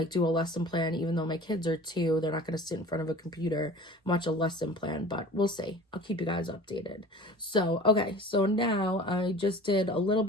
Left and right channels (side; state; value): both; normal; correlation 0.42